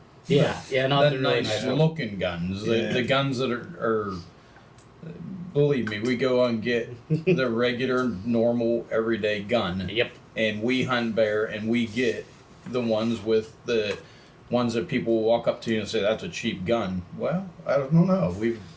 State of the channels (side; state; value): both; identical; correlation 1.00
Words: Yeah, not The the really nice nice ones. looking guns. Yeah. The guns that are, believe me, we go and get the regular, normal, everyday gun. Yep. And we hunt bear and we get the ones with the ones that people will walk up to you and say, that's a cheap gun. Well, I don't know. We've